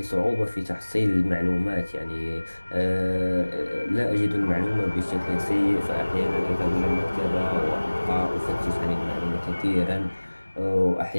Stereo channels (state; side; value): inverted; both; correlation -1.00